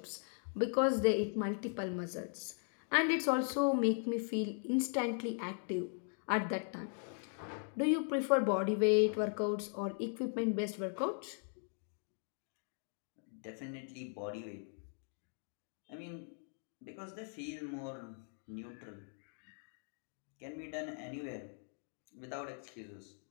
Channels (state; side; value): silent; right; 52 dB below the other